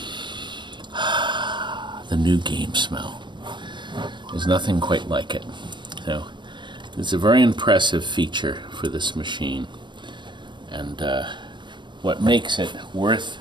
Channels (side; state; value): left; late; 0.23 ms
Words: The new game smell. There's nothing quite like it. So it's a very impressive feature for this machine, and what makes it worth